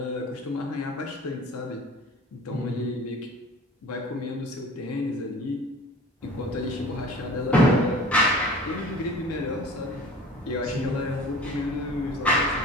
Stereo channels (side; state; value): both; normal; correlation 0.43